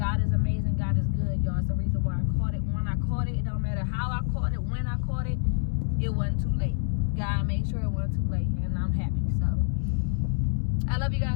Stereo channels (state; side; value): silent; right; digital silence